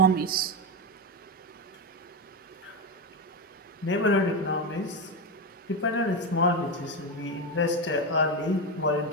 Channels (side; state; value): both; normal; correlation 0.12